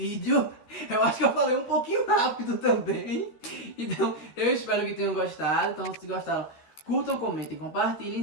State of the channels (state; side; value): late; right; 13 ms